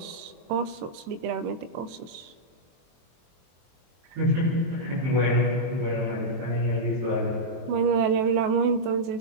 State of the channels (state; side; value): late; left; 23 ms